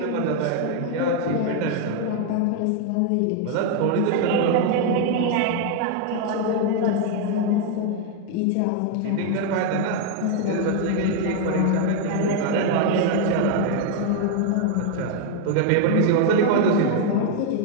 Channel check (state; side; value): different; both; correlation 0.00